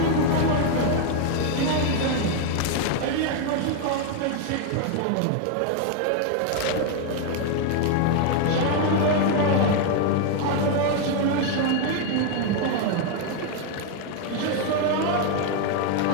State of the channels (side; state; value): both; different; correlation 0.00